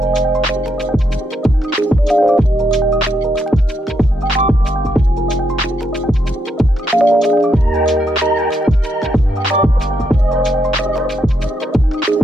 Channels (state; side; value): normal; both; correlation 0.78